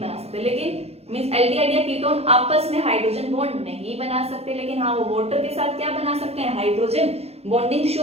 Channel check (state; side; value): late; left; 0.30 ms